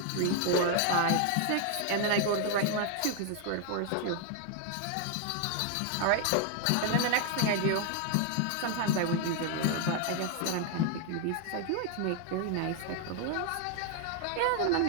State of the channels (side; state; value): both; different; correlation 0.01